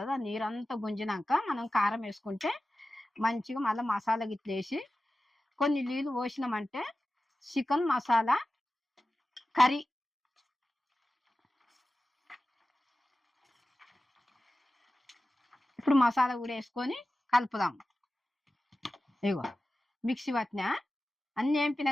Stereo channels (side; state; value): both; normal; correlation 0.95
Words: ఆ నీరంతా గుంజినాక మనం కారం వేసుకుంటే మంచిగా మళ్ళీ మసాలా గిట్ల వేసి కొన్ని నీళ్ళు పోసినామంటే చికెన్ మసాలా కర్రీ. ఇప్పుడు మసాలా కూడా వేసుకొని కలుపుదాం. ఇగో మిక్సీ పట్టినా, అన్నీ వేంపినా